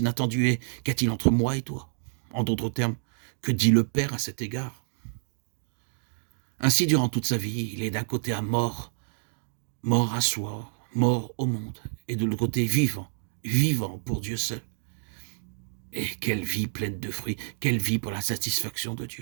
est « Qu'y-a-t-il entre moi et toi ?» En d'autres termes, que dit le Père à cet égard? Ainsi, durant toute sa vie, il est d'un côté à mort à soi, mort au monde, et de l'autre côté vivant, vivant pour Dieu seul. Et quelle vie pleine de fruits, quelle vie pour la satisfaction de Dieu.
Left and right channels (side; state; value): left; silent; digital silence